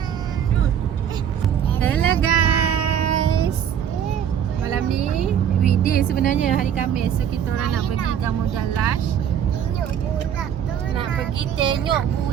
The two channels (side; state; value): left; quieter; 9.0 dB